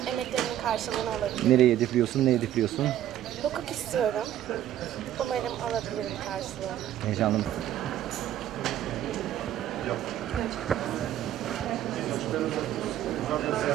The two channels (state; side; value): quieter; left; 11.9 dB